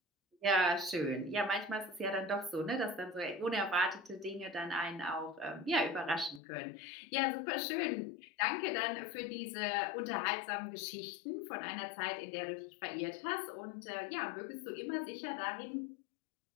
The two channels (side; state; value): right; drops out; at 6.4 s